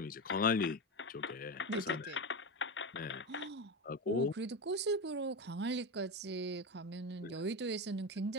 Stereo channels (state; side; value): normal; both; correlation 0.18